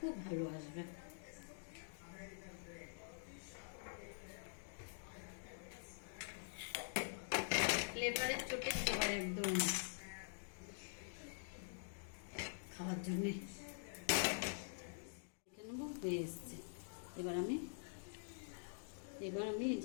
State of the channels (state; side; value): silent; right; digital silence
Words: ভালো আসবে। ফ্লেভারের চোটে ফ্লেভার একদম খাওয়ার জন্যে দেখে নেবো হয়ে এসছে। এবার আমি এই